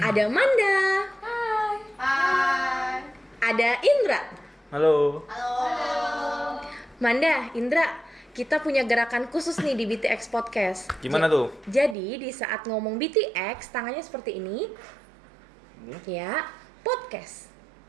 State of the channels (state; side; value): drops out; left; at 12.0 s